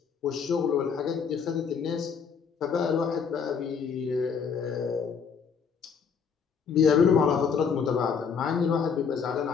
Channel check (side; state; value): right; quieter; 6.3 dB